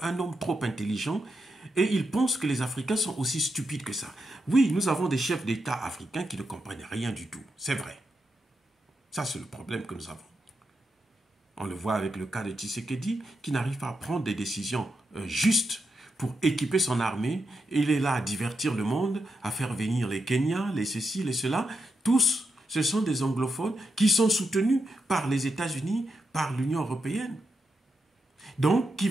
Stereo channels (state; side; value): normal; both; correlation 0.84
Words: un homme trop intelligent et il pense que les Africains sont aussi stupides que ça. Oui, nous avons des chefs d'État africains qui ne comprennent rien du tout. C'est vrai. Ça, c'est le problème que nous avons. On le voit avec le cas de Tshisekedi, qui n'arrive pas à prendre des décisions justes pour équiper son armée. Il est là à divertir le monde, à faire venir les Kenyans, les ceci, les cela. Tous, ce sont des anglophones qui sont soutenus par les États-Unis, par l'Union européenne. Donc, qui